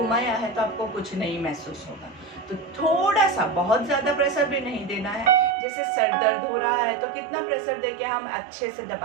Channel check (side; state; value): left; drops out; at 5.6 s